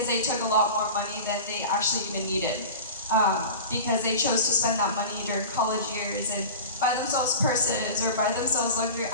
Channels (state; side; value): inverted; both; correlation -0.34